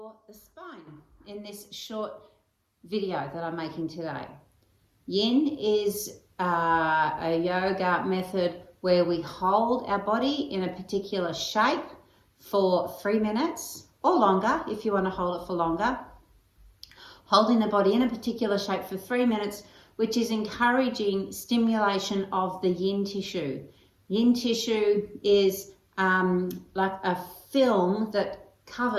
the spine in this short video that I'm making today. Yin is a yoga method where we hold our body in a particular shape for 3 minutes or longer if you want to hold it for longer. Holding the body in a particular shape for 3 minutes, which is encouraging stimulation of the yin tissue. Yin tissue is like a film that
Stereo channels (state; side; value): identical; both; correlation 1.00